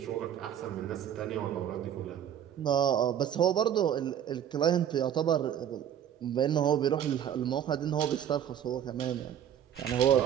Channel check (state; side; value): quieter; left; 9.8 dB